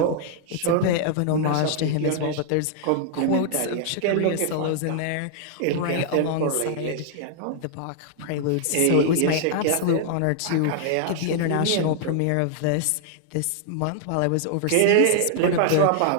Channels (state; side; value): different; both; correlation -0.01